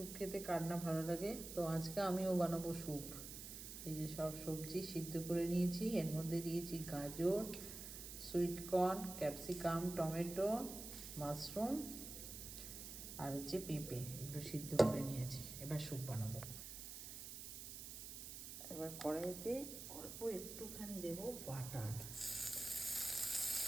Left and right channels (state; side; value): noise; right; hiss, 9 dB below the sound